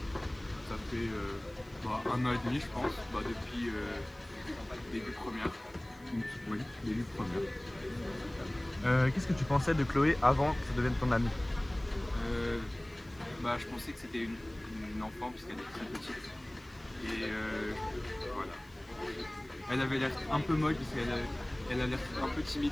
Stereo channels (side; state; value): left; noise; hiss, 28 dB below the sound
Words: Ça fait 1 an et demi je pense, depuis début première. Oui, début première. Qu'est-ce que tu pensais de Chloé avant que ça devienne ton amie? Je pensais que c'était une enfant puisqu'elle est très petite. Et voilà. Elle avait l'air un peu molle parce qu'elle a l'air un peu timide